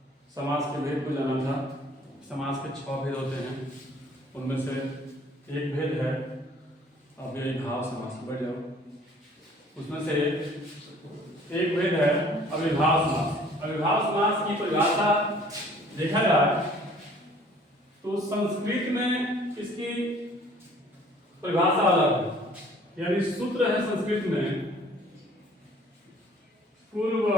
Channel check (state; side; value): normal; both; correlation 0.54